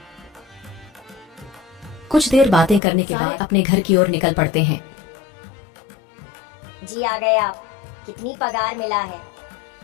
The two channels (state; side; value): drops out; right; at 2.8 s